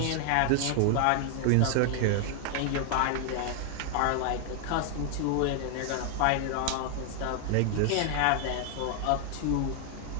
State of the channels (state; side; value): different; both; correlation 0.00